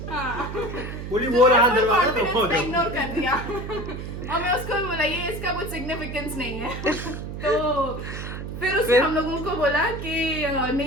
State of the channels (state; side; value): noise; right; hum, 8 dB below the sound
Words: हाँ। बोली वो रहा दरवाजा, confidence दफा हो पे जाओ। इग्नोर कर दिया। और मैं उसको भी बोला ये इसका कुछ सिग्निफिकेंस नहीं है। तो फिर उसने हम लोगों को बोला कि